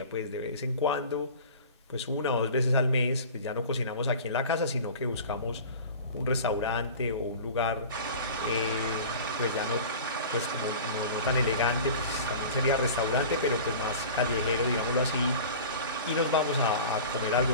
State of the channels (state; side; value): inverted; both; correlation -0.38